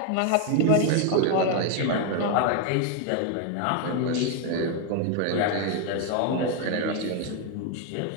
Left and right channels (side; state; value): both; different; correlation 0.01